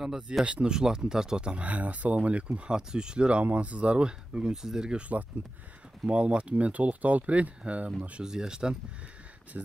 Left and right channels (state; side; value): normal; both; correlation 0.93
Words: Зияштын ушул тартып атам. Ассаламу алейкум, ат сүйүүчүлөр, амансыздарбы? Бүгүн сиздерге ушул аттын маалыматын мен толуктап алып берейин. Мына ушу Зияштан